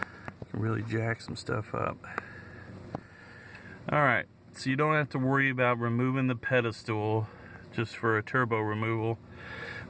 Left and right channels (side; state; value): both; identical; correlation 1.00